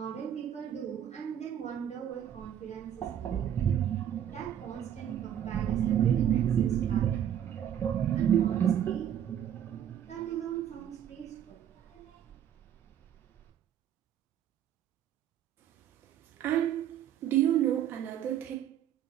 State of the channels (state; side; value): quieter; left; 9.9 dB